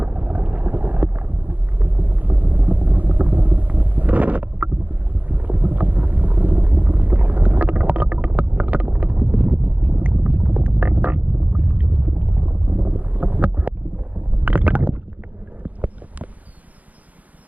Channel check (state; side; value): late; left; 0.074 ms